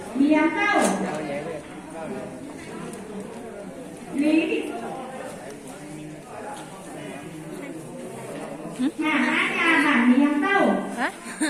liếng câu lý thị Hà Nhà bản liếng câu hả?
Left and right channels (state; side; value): identical; both; correlation 1.00